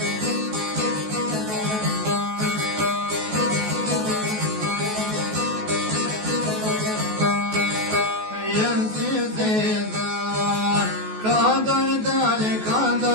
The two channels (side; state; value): left; late; 14 ms